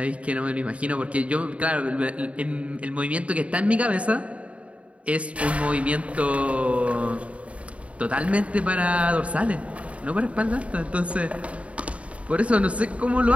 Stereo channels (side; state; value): left; late; 0.064 ms